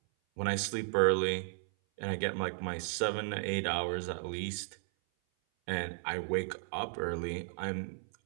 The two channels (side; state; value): left; silent; 55 dB below the other